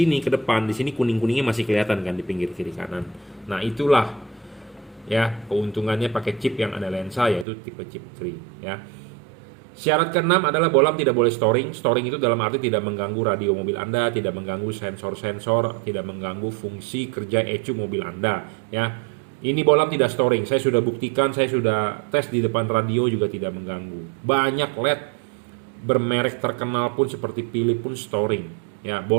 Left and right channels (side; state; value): left; drops out; at 7.5 s